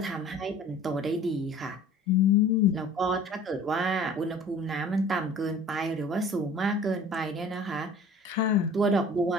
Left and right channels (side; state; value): both; normal; correlation 0.46